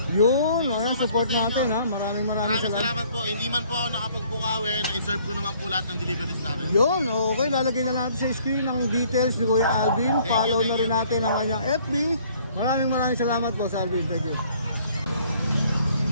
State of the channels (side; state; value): both; inverted; correlation -0.59